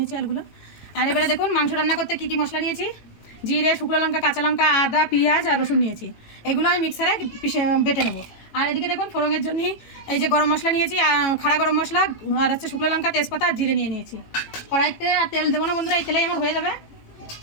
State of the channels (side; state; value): right; late; 18 ms